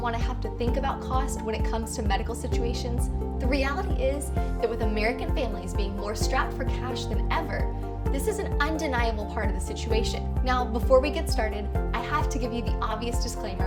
to have to think about cost when it comes to medical situations, the reality is that with American families being more strapped for cash than ever, this is an undeniable part of the situation. Now, before we get started, I have to give you the obvious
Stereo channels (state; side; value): identical; both; correlation 1.00